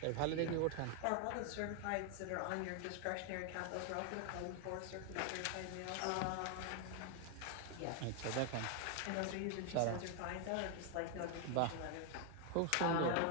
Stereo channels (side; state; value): both; different; correlation 0.01